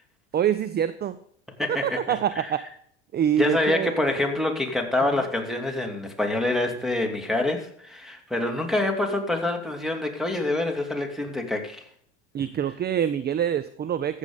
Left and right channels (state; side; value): normal; both; correlation 0.53